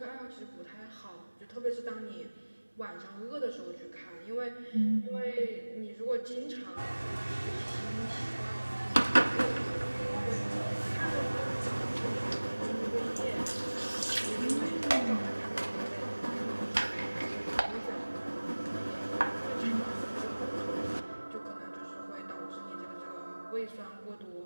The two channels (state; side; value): inverted; both; correlation -1.00